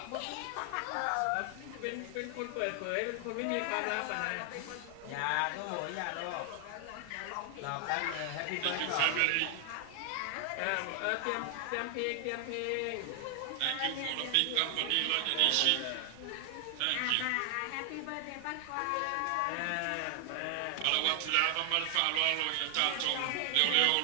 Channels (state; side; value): different; both; correlation 0.00